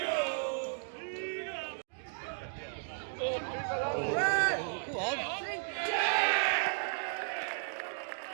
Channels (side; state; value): left; silent; digital silence